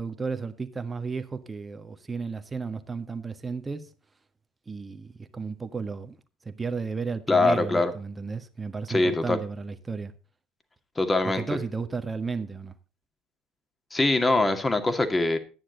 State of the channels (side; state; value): both; normal; correlation 0.88